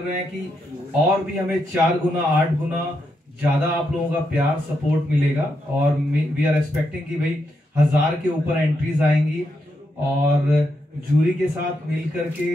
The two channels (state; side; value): normal; both; correlation 0.82